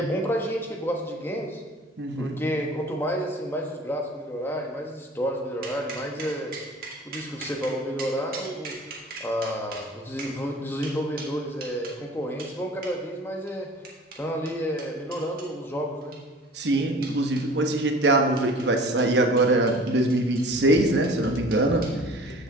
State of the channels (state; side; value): normal; both; correlation 0.45